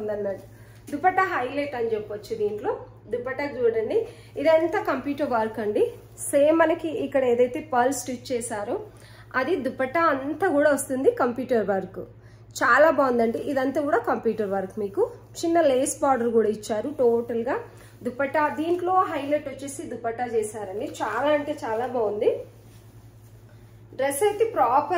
ఉందన్నట్టు. దుపట్టా హైలైట్ అని చెప్పొచ్చు. దీంట్లో దుపట్టా చూడండి, ఇదంతా కంప్యూటర్ వర్క్ అండి. సేమ్ మనకి ఇక్కడ ఏదైతే పర్ల్ స్టిచ్ చేశారో అది దుపట్టా అంతా కూడా వస్తుంది కంప్యూటర్ వర్క్. చాలా బాగుందండి. ఇదంతా కూడా కంప్యూటర్ వర్క్. మీకు చిన్న లేస్ బార్డర్ కూడా ఇచ్చారు. టోటల్ గా దుపట్టా దీంట్లో హైలైట్ వచ్చేసి దుపట్టా చేశారండి. చాలా అంటే చాలా బాగుంది. డ్రెస్ అయితే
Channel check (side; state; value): both; identical; correlation 1.00